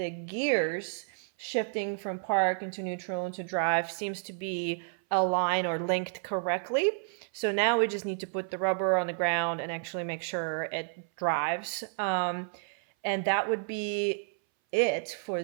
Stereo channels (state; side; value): silent; left; 57 dB below the other